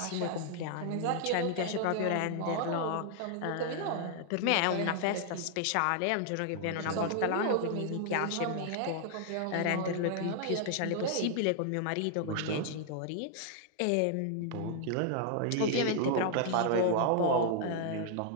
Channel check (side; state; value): both; different; correlation 0.00